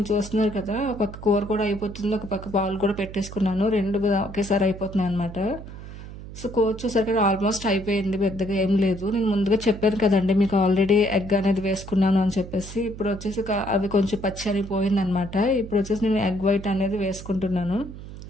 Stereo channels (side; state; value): right; noise; hum, 13 dB below the sound